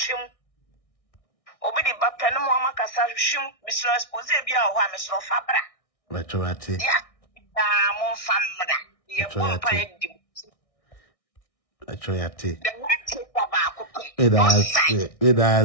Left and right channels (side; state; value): right; late; 1.6 ms